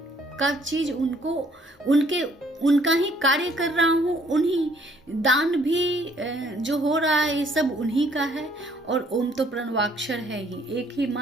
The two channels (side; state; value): both; normal; correlation 0.63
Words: का चीज उनका ही कार्य कर रहा हूँ, उन्हीं दान भी जो हो रहा है ये सब उन्हीं का है। और ओम तो प्रणवाक्षर है ही, एक ही